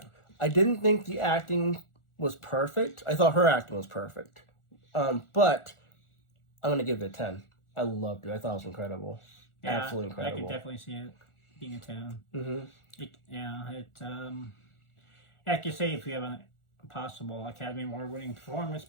I didn't think the acting was perfect. I thought her acting was perfect. But I'm going to give it a 10. I loved it. I thought it was incredible. Yeah, absolutely incredible. I could definitely see it being a 10. Like you say, if you have a possible Academy Award winning performance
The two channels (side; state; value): right; late; 1.4 ms